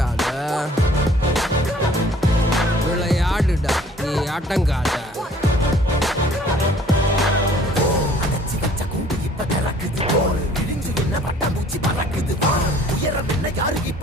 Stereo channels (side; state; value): both; normal; correlation 0.55